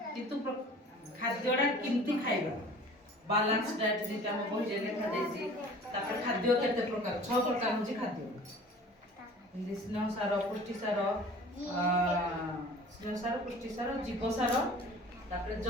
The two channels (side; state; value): both; normal; correlation 0.45